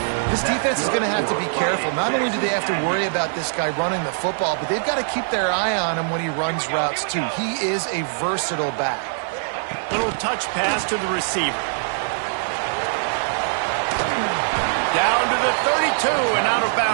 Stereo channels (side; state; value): left; silent; 64 dB below the other